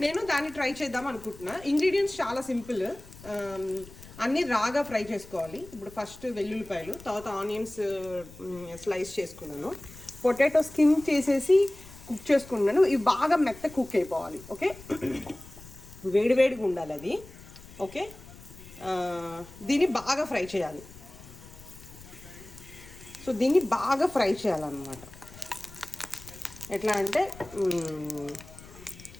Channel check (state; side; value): noise; left; rumble, 19 dB below the sound